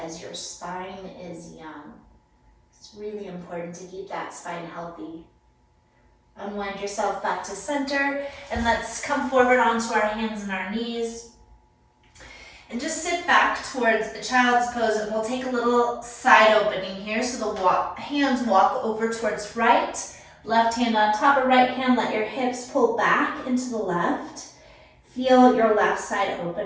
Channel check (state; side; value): identical; both; correlation 1.00